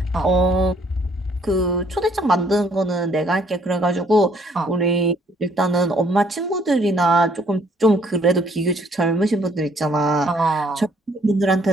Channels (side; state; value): both; normal; correlation 0.65